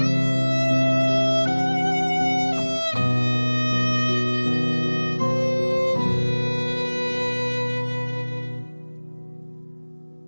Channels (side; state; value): both; inverted; correlation -1.00